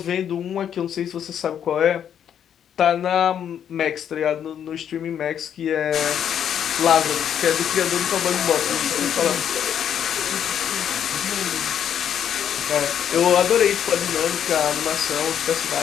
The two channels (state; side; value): quieter; right; 9.0 dB